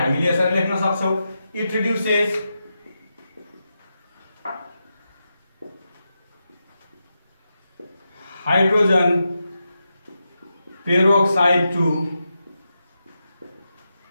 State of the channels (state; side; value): inverted; both; correlation -0.88